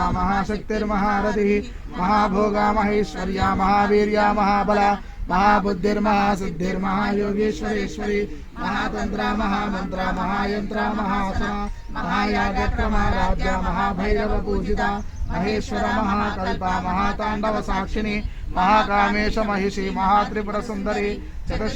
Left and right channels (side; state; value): both; identical; correlation 1.00